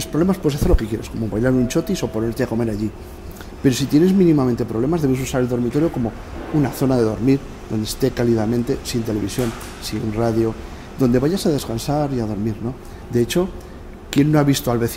problemas puedes hacer lo que quieras, como bailar un chotis o ponerte a comer allí. Pero si tienes mínimamente problemas, debes usar el dormitorio como una zona de dormir, donde esté cálidamente, sin televisión, sin radio, donde vayas a descansar y a dormir, ¿no? De hecho, ¿quién no ha visto al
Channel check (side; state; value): both; identical; correlation 1.00